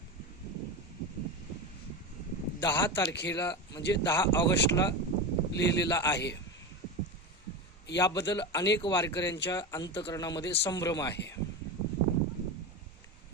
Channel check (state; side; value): normal; both; correlation 0.21